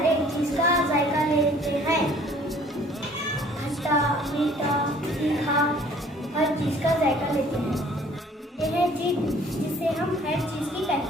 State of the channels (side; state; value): both; normal; correlation 0.55